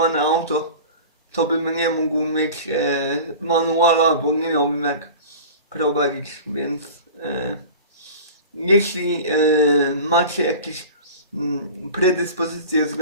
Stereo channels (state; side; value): inverted; both; correlation -0.36